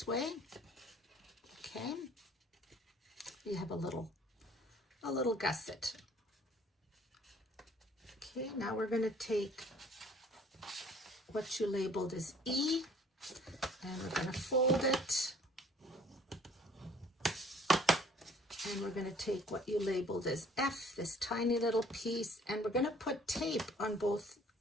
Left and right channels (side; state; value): both; normal; correlation 0.55